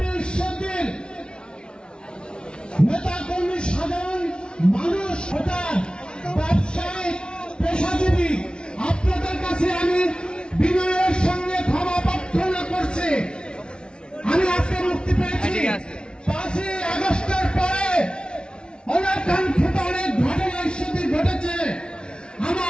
ঈশ্বরদের নেতা কর্মী, সাধারণ মানুষ, হঠাৎ ব্যবসায়িক পেশাজীবী, আপনাদের কাছে আমি বিনয়ের সঙ্গে ক্ষমা প্রার্থনা করছি। আমি আজকে মুক্তি পেয়েছি। 5ই আগস্টের পরে অনাকাঙ্ক্ষিত অনেক ঘটনা ঈশ্বরদের ঘটেছে।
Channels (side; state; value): right; late; 0.055 ms